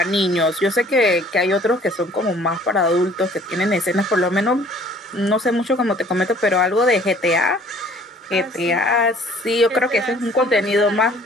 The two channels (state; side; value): normal; both; correlation 0.54